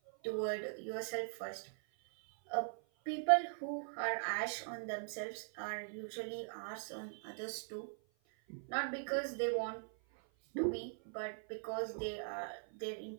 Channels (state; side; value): silent; left; 51 dB below the other